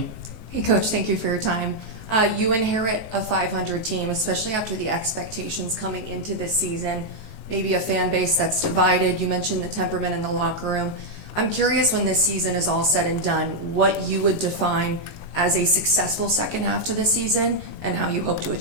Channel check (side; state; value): right; late; 19 ms